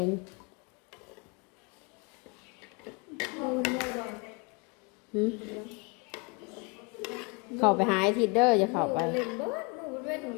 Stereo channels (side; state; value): right; quieter; 30.4 dB